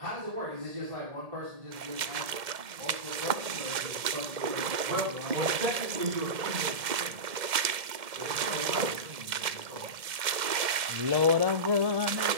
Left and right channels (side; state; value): left; late; 1.7 ms